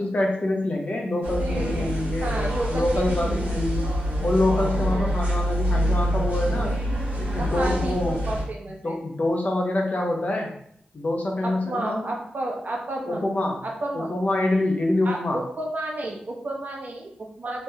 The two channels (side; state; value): both; normal; correlation 0.88